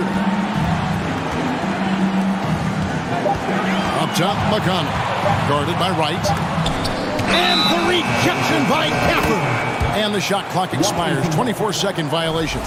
Up top, McConnell. Guarded by Wright. And the rejection by Gafford. And the shot clock expires. 24-second violation.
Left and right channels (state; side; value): identical; both; correlation 1.00